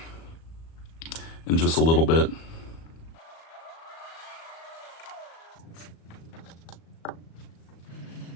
in just a little bit.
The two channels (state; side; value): late; right; 36 ms